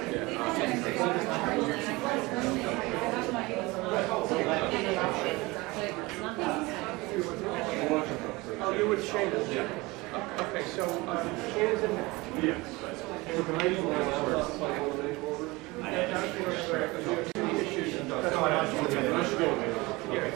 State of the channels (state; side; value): quieter; left; 22.8 dB